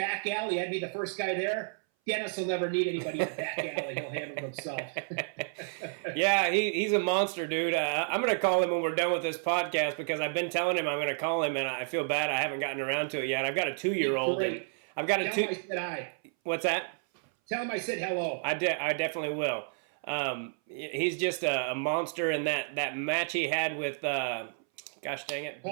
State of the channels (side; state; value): left; silent; 57 dB below the other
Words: alley, I'd be the first guy there. Dennis will never need anybody in the back alley. He'll handle himself. Yeah, he's a monster, dude. I'm going to call him when we're done with this podcast because I've been telling him I'm going to call him, and I feel bad I haven't gotten around to it yet. I've got a 2-year-old. And I've got Tell him I said hi. What's that? Tell him I said hello. I definitely will. He's just a monster, and that match he had with, gosh dang it,